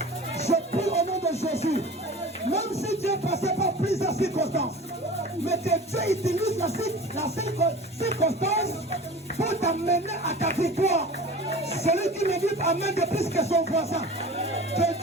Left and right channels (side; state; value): both; normal; correlation 0.38